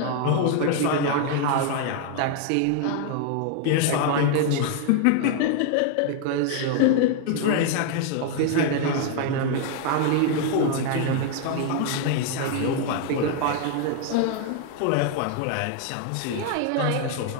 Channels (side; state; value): both; different; correlation 0.00